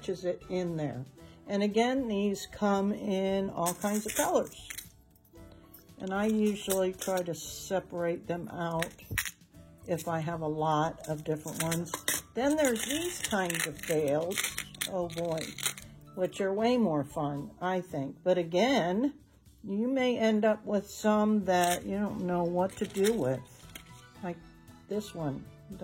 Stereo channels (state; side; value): identical; both; correlation 1.00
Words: it in there. And again, these come in all kinds of colors. And I usually try to separate them out if I have a lot of different ones. Then there's these kinds of fails, oh boy, which are way more fun, I think. But again, you may end up with some that you don't know what to do with. Like this one